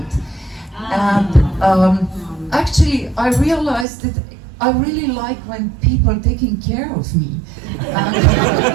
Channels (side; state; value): left; drops out; at 3.9 s